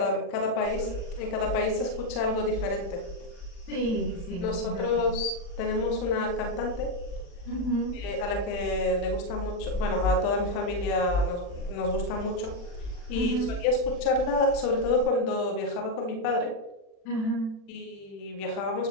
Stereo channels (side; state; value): right; late; 40 ms